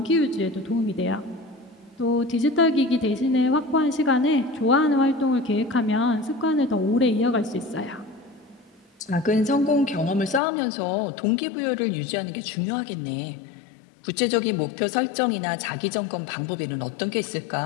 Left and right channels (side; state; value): right; drops out; at 10.4 s